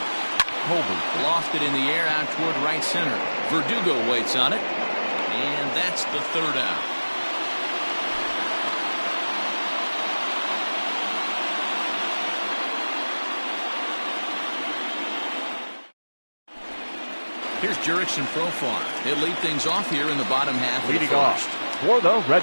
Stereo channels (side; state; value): both; inverted; correlation -1.00